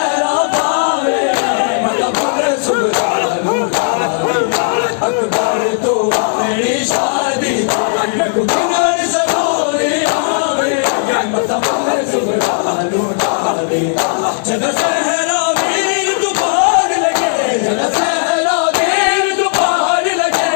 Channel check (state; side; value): silent; right; digital silence